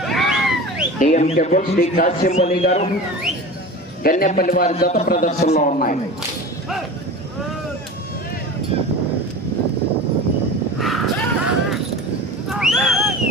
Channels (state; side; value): normal; both; correlation 0.33